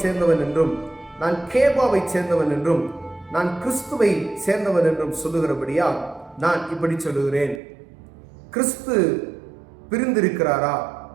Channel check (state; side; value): drops out; left; at 7.6 s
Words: சேர்ந்தவன் என்றும், நான் கேபாவை சேர்ந்தவன் என்றும், நான் கிறிஸ்துவை சேர்ந்தவன் என்றும் சொல்லுகிறபடியா நான் இப்படி சொல்லுகிறேன். கிறிஸ்து பிரிந்திருக்கிறாரா?